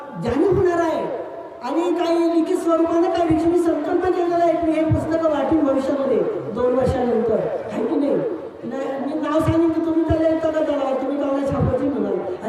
जाणीव होणार आहे. आणि काही लिखित स्वरूपाने काही विषयी संकल्प केलेला आहे की हे पुस्तकं वाटेल भविष्यामध्ये 2 वर्षानंतर, आहे की नाही? मी नाव सांगेन की तुम्ही त्याला येतं का, त्याला तुम्ही गावाला छापायची म्हणाल,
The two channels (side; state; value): both; identical; correlation 1.00